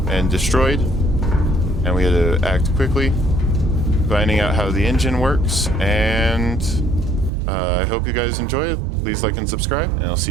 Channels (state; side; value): drops out; left; at 7.3 s